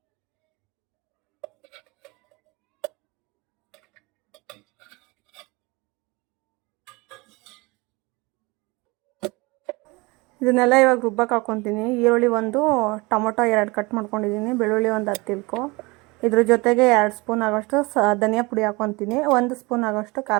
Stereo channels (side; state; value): left; quieter; 25.0 dB